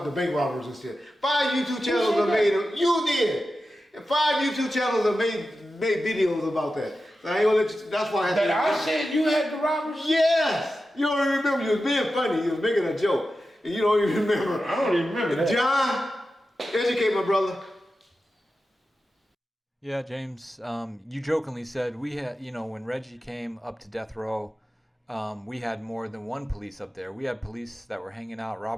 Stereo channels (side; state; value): both; normal; correlation 0.92